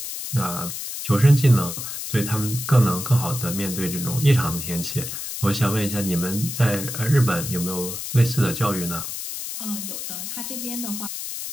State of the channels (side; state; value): left; noise; hiss, 6 dB below the sound